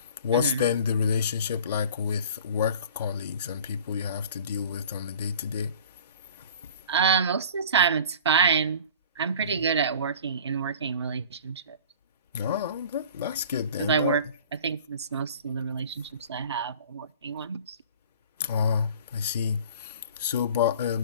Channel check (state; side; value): inverted; both; correlation -0.43